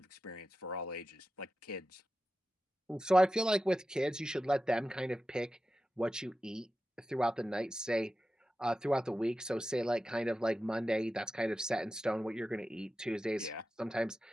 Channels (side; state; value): both; normal; correlation 0.93